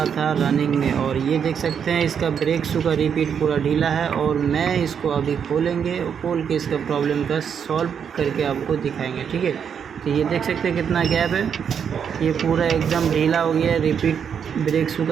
था रनिंग में, और ये देख सकते हैं इसका ब्रेक शू का रिपीट पूरा ढीला है। और मैं इसको अभी खोलेंगे, खोल के इसका प्रॉब्लम का सॉल्व करके आपको दिखाएंगे, ठीक है। तो ये देख सकते हैं कितना गैप है, ये पूरा एकदम ढीला हो गया है, रिपीट ब्रेक शू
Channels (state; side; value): quieter; left; 7.5 dB